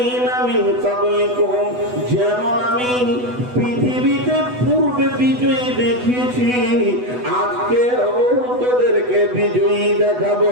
মিন ক্বাবলিকুম। যেমন আমি পৃথিবীতে পূর্বে বিজয়ী দেখিয়েছি, আজকে তোদেরকে বিজয়ী দেখাবো।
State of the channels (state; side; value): late; left; 8.1 ms